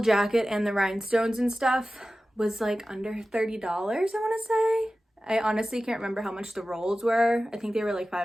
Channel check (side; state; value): both; normal; correlation 0.95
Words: and the rhinestones and stuff was like under $30, I want to say. I honestly can't remember how much the rolls were. I think they were like